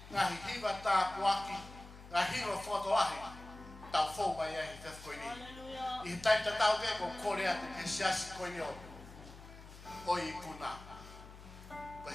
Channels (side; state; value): left; noise; hum, 16 dB below the sound